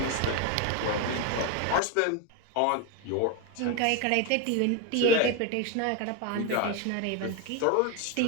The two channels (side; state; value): both; different; correlation 0.02